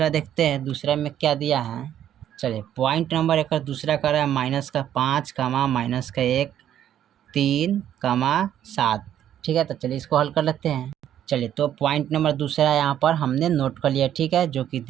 देखते हैं। दूसरा में क्या दिया है, चलिए पॉइंट नंबर एक दूसरा कर रहा है -5, -1, 3, 7। ठीक है, तो चलिए इसको हल कर लेते हैं। चलिए, तो पॉइंट नंबर दूसरा यहाँ पर हमने नोट कर लिया। ठीक है, जो कि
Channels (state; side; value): quieter; left; 10.7 dB